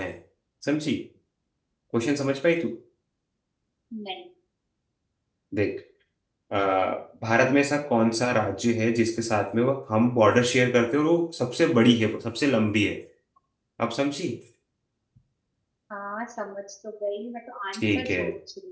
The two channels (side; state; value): both; identical; correlation 1.00